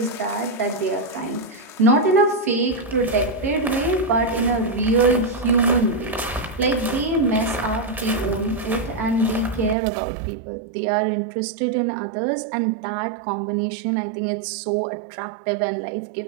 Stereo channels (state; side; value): drops out; left; at 9.8 s